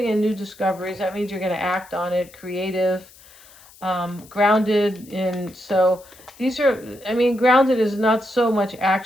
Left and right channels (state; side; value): noise; left; hiss, 24 dB below the sound